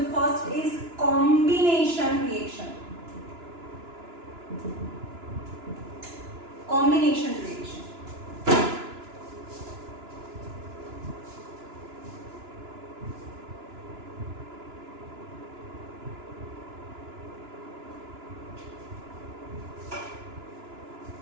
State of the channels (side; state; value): left; late; 2.9 ms